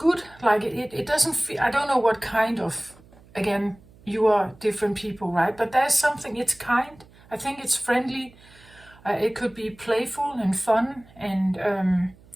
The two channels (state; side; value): noise; right; hum, 25 dB below the sound